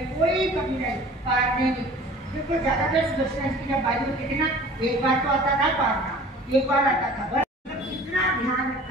कोई कमी नहीं, पार नहीं। देखो ज्यादातर सुदर्शन की जब बारी होती थी ना, एक बार तो आता था पारना, एक बार आता था बस। इतना ध्यान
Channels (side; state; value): both; normal; correlation 0.46